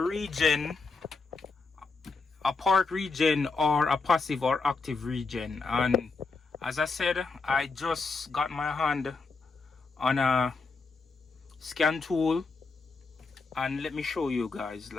a part regen, or a passive or active regen. And as I said, I just got my hand on a scan tool, and let me show you guys,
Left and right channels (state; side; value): quieter; right; 4.2 dB